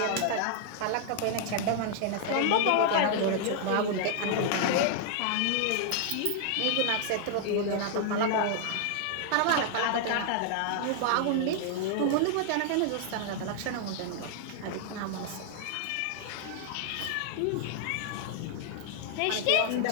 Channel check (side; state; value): both; different; correlation -0.01